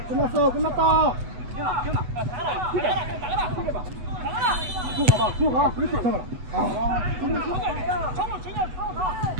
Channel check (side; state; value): left; late; 8.1 ms